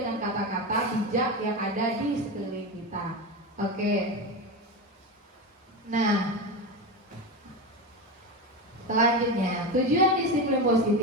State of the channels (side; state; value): both; normal; correlation 0.19